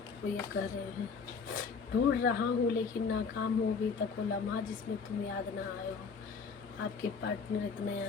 वो ये कह रहे हैं ढूंढ रहा हूँ लेकिन नाकाम हो अभी तक वो लम्हा जिसमें तुम याद ना आए हो। आपके पार्टनर इतना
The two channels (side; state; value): right; quieter; 5.4 dB